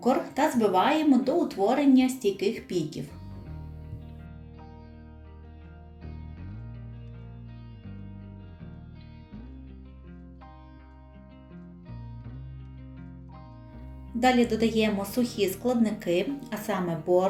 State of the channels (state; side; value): identical; both; correlation 1.00